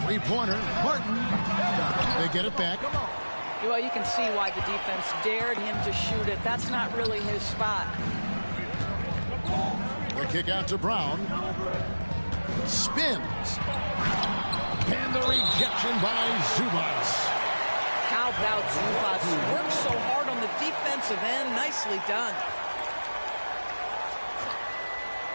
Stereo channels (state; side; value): inverted; both; correlation -1.00